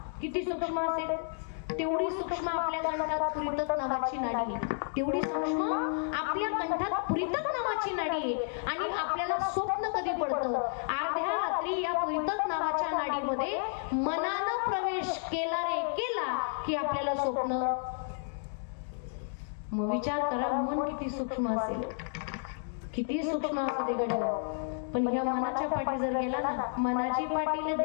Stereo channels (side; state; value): right; silent; digital silence